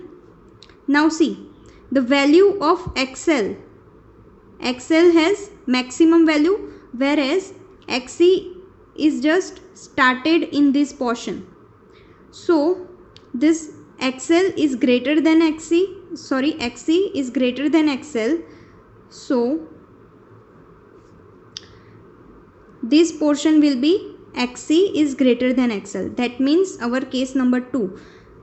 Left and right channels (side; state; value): both; identical; correlation 1.00